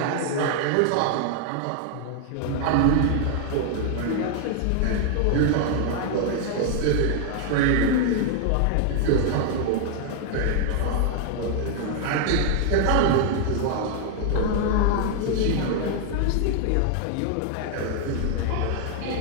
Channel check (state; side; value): different; both; correlation 0.00